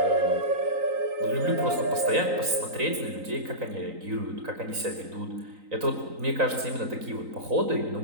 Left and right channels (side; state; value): left; late; 3.9 ms